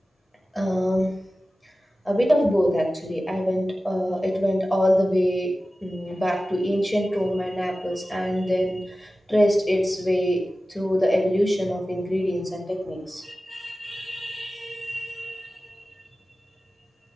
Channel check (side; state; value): both; normal; correlation 0.95